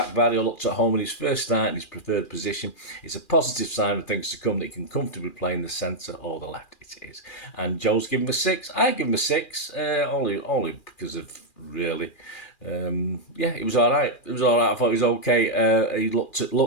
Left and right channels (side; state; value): right; late; 2.4 ms